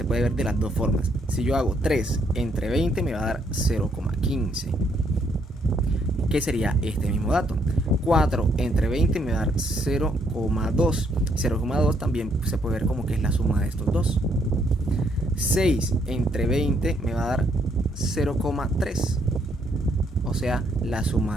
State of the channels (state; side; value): normal; both; correlation 0.71